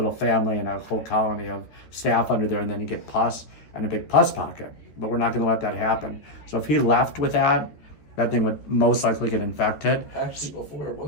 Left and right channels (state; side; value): late; right; 14 ms